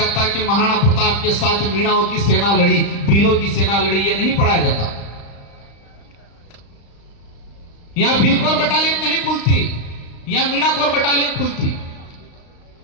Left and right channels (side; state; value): right; late; 35 ms